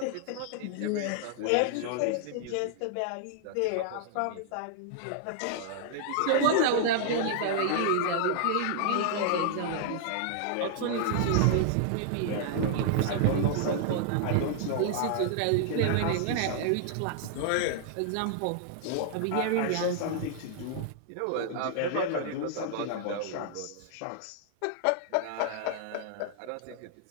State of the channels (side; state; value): both; different; correlation -0.01